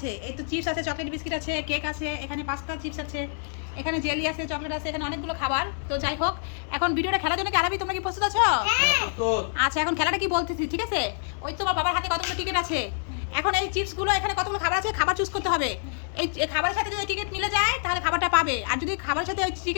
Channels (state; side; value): silent; right; 59 dB below the other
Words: এই তো চিপস আছে, চকলেট বিস্কিট আছে, কেক আছে, এখানে পাস্তা চিপস আছে, এখানে জেলি আছে, চকলেট আছে, এখানে অনেকগুলো খাবার। তো যাই হোক, এখন ভিডিওটা খেলার জন্য কি আরবি তোমরা কি প্রস্তুত আছো? আচ্ছা, এখন খেলাটা কি বলতেছি, ঠিক আছে? ওই তোমার বাবার হাতে কতগুলো টিকিট আছে। এখন এই চিপসগুলো, এখানে কতগুলো খাবার আছে, খাবার চুজ করতে হবে। এই খাবারের সাথে যদি টিকিট মিলে যায় তাহলে খাবারটা পাবে, আর যদি খাবারের সাথে ওই